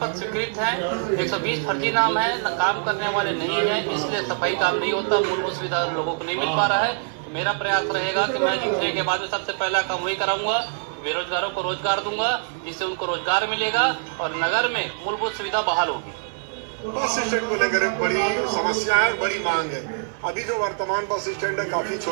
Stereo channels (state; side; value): silent; left; 63 dB below the other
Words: स्वीकृत हैं, 120 फर्जी नाम है, काम करने वाले नहीं है, इसलिए सफाई काम नहीं होता, मूलभूत सुविधा लोगों को नहीं मिल पा रहा है। तो मेरा प्रयास रहेगा कि मैं जीतने के बाद में सबसे पहला काम वही कराऊंगा, बेरोजगारों को रोजगार दूंगा, जिससे उनको रोजगार मिलेगा और नगर में मूलभूत सुविधा बहाल होगी। बस स्टैंड को लेकर एक बड़ी समस्या है और बड़ी मांग है। अभी जो वर्तमान बस स्टैंड है काफी